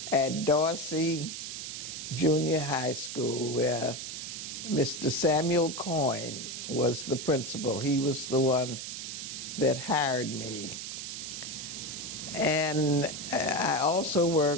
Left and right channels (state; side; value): noise; right; hiss, 7 dB below the sound